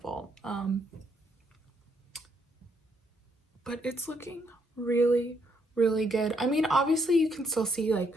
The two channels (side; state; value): both; normal; correlation 0.73